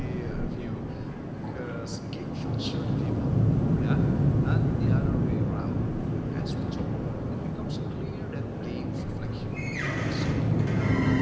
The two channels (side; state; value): both; identical; correlation 1.00